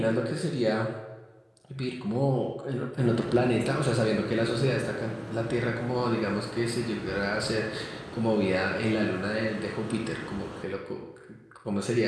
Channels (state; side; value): identical; both; correlation 1.00